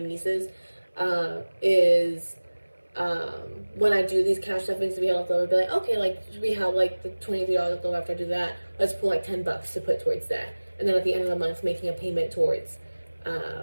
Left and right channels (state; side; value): inverted; both; correlation -1.00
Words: is when I do these cash stuffings to be left over, be like, okay, like we have like the $23 left over after I do that. Let's pull like $10 to put towards that, and then at the end of the month, making a payment towards